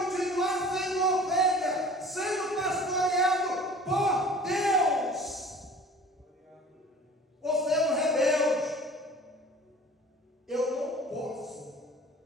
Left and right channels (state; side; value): normal; both; correlation 0.45